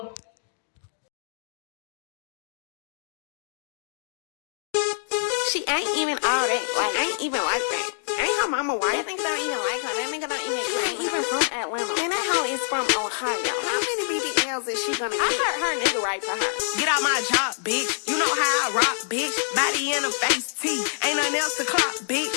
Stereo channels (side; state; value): right; silent; digital silence